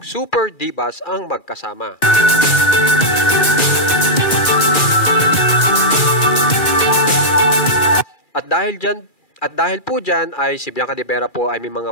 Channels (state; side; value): late; right; 2.4 ms